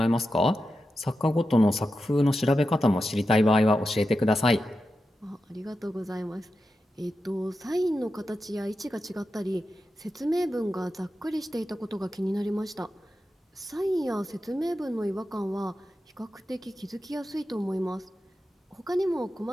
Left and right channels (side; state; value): both; normal; correlation 0.90